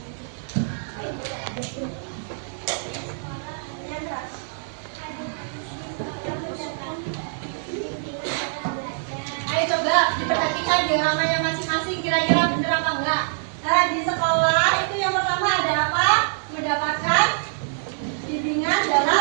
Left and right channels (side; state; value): left; silent; digital silence